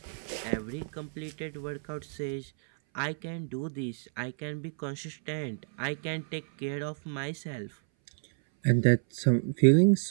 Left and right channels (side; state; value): left; silent; 58 dB below the other